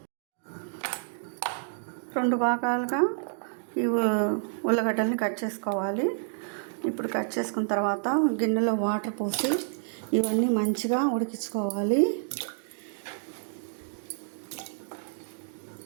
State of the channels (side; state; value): left; silent; digital silence